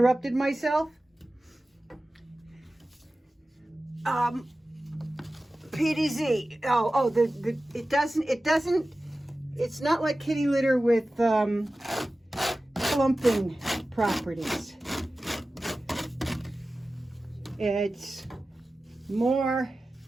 myself? PDZ. It's not like kitty litter with clumping properties. It's more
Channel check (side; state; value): both; normal; correlation 0.95